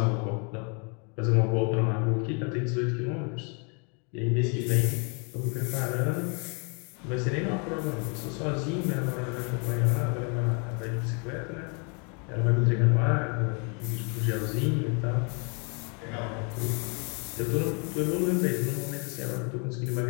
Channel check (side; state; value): right; quieter; 35.9 dB